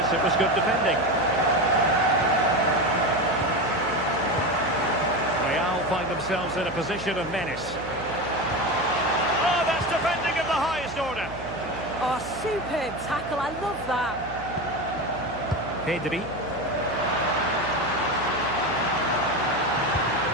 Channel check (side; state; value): right; noise; hum, 14 dB below the sound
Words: it was good defending. Find themselves in a position of menace. Oh, that's defending of the highest order. Oh, superb tackle. I love that. Pedri.